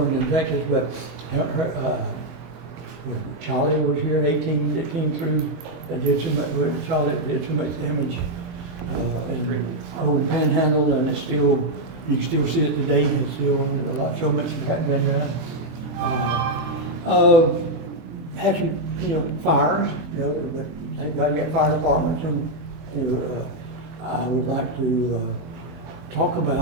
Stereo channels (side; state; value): left; late; 24 ms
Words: in Texas, but, Charlie was here, 18, that came through, that did so much, Charlie did so much damage. And old Panhandle, and it's still, you can still see it today, it's still so much has been done. Had some, you know, fires, you know, but they've got to get fire departments, and, you know, I would like to, talk